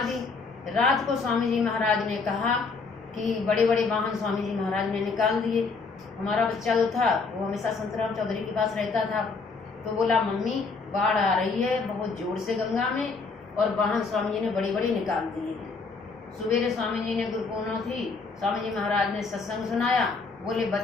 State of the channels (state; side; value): quieter; right; 4.4 dB